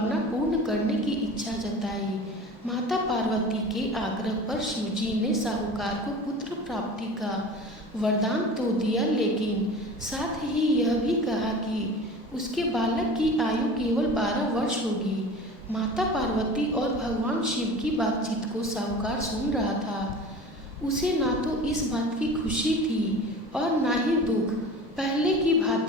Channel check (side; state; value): both; normal; correlation 0.37